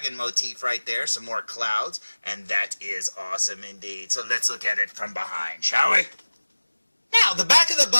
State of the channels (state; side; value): inverted; both; correlation -1.00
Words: motif right there, some more clouds, and that is awesome indeed. So let's look at it from behind, shall we? Now, the back of the